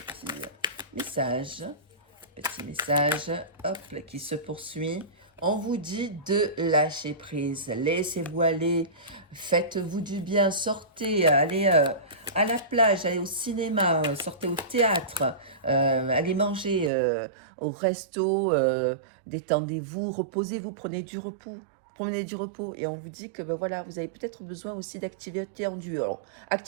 message, hop, qui se poursuit. On vous dit de lâcher prise, laissez-vous aller, faites-vous du bien, sortez, allez à la plage, allez au cinéma, sortez au théâtre, allez manger au resto, détendez-vous, reposez-vous, prenez du repos. Prenez du repos et on vous dit que ben voilà, vous avez peut-être besoin aussi d'activité en duo. Alors,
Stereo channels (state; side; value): drops out; left; at 16.9 s